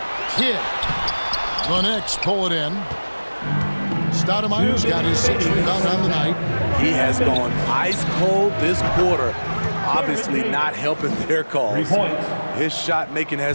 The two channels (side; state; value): both; inverted; correlation -1.00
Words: Kidd. The Knicks pull it in. Stoudemire's got his 6th rebound on the night. He has gone ice cold this quarter. Obviously not helping their cause. His shot making